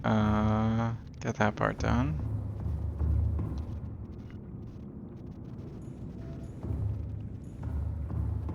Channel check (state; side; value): identical; both; correlation 1.00